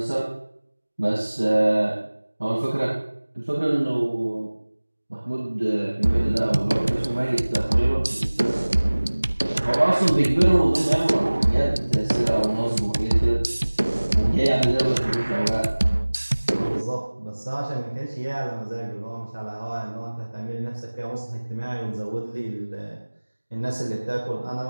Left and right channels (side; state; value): both; inverted; correlation -1.00